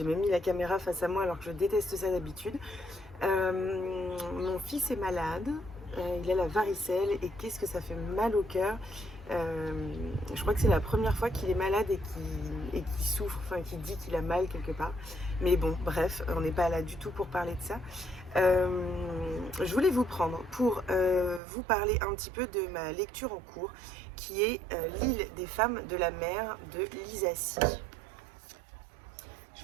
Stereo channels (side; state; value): left; drops out; at 21.4 s